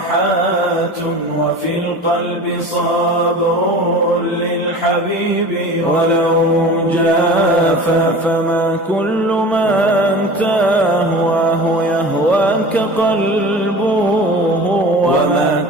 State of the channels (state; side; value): normal; both; correlation 0.37